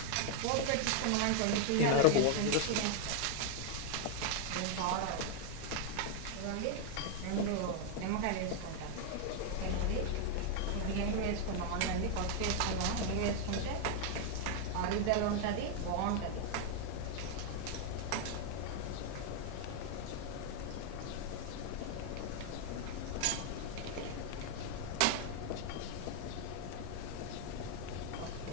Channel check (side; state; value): both; different; correlation 0.00